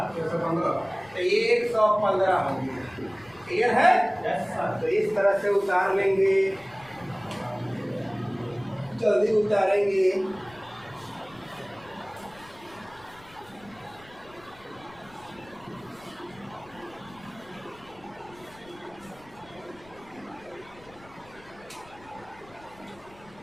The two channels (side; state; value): left; noise; rumble, 25 dB below the sound